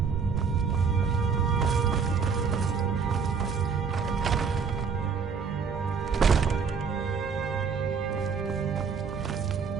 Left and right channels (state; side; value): quieter; left; 5.9 dB